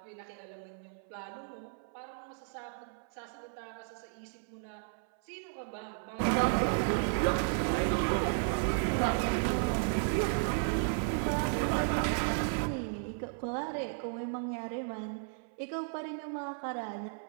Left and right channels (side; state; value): left; silent; 55 dB below the other